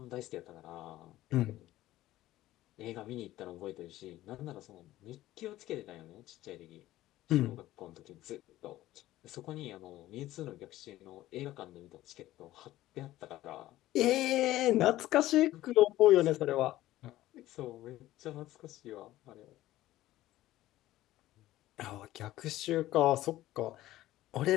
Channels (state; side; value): quieter; right; 15.4 dB